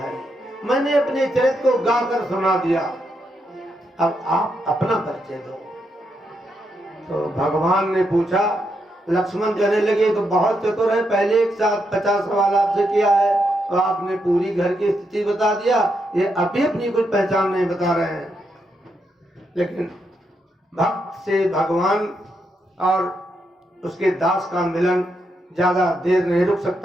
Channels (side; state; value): both; normal; correlation 0.81